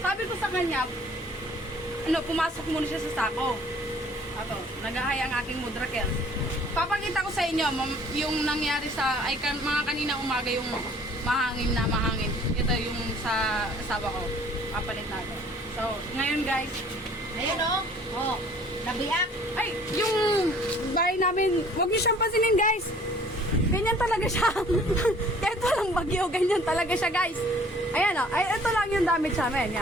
ko sa kanya, pumasok muna siya sa sako. Ato, nagahay ang aking mudrakel. Papakita ko sa inyo yung nangyari sa, mga kanina umaga yung mahangin na mahangin. Ito yung sa asawa ko. Papalit natin. So, ngayon guys, Ayan o. Oh, nabiyak. ay, yung bahay namin, huwag niyo siyang pansinin guys. Ganyan talaga siya. Kahit walang bagyo, ganyan talaga siya guys. Ayan o, ay, ito lang yung damage sa amin.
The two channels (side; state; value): both; normal; correlation 0.54